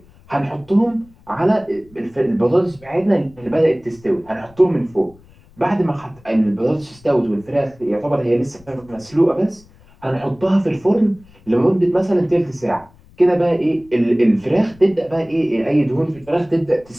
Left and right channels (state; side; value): noise; left; rumble, 27 dB below the sound